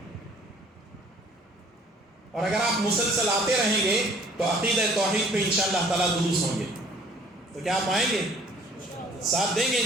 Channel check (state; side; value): normal; both; correlation 0.55